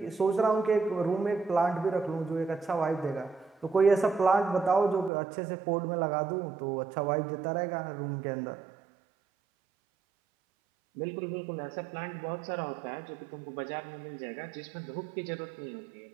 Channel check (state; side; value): drops out; left; at 5.1 s